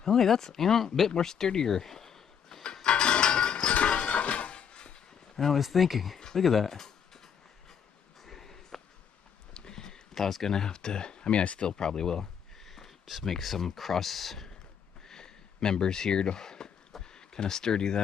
Oh, wait, that's, you know, a bit more sturdier than I was thinking. Look at that. I was gonna have to, I mean, I still probably will just make some cross members here to kind of sturdy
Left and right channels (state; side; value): quieter; right; 7.6 dB